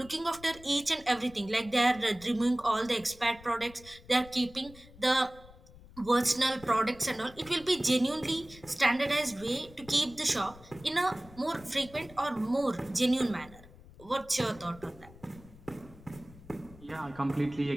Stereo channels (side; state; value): left; noise; rumble, 21 dB below the sound